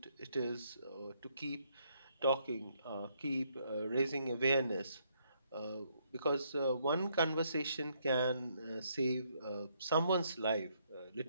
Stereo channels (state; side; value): inverted; both; correlation -0.72